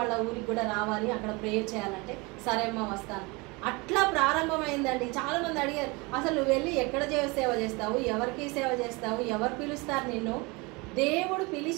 వాళ్ళ ఊరికి కూడా రావాలి, అక్కడ ప్రేయర్ చేయాలంటే సరే అమ్మ వస్తాను. అట్లా ప్రారంభమైందండి. చాలా మంది అడిగారు, అసలు నువ్వు వెళ్ళి ఎక్కడ సేవ చేస్తావు, ఎవరికి సేవ చేస్తావు, ఎవరు పిలుస్తారు నిన్ను? దేవుడు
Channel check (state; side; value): quieter; left; 26.4 dB